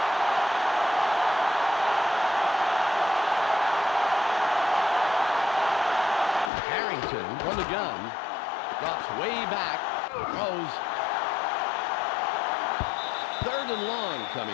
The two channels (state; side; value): drops out; right; at 6.5 s